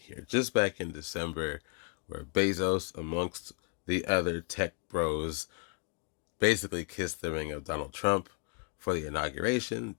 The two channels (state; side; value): quieter; right; 34.5 dB